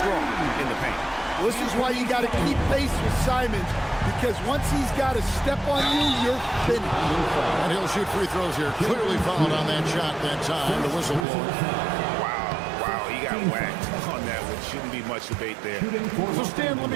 in the paint. This is why you got to keep pace with Simons, because once he's got a step on you, you're finished. And he'll shoot free throws here. Clearly fouled on that shot that time. The whistle blows. Wow, he got whacked on that one. Shouldn't be much debate there. So Stan, let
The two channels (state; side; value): drops out; left; at 11.2 s